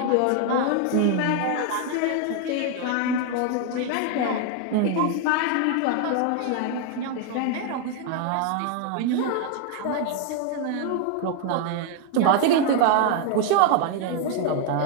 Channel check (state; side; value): different; both; correlation 0.00